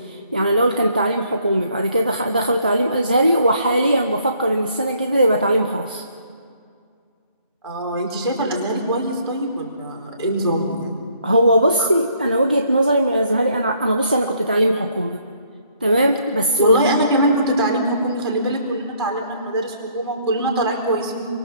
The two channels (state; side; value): inverted; both; correlation -0.66